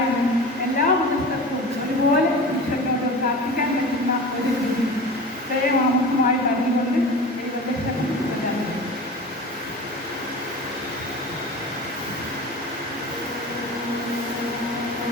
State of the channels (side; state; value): both; normal; correlation 0.33